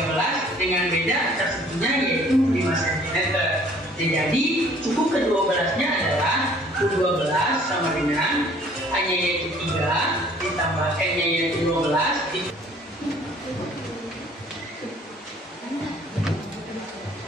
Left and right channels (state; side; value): normal; both; correlation 0.56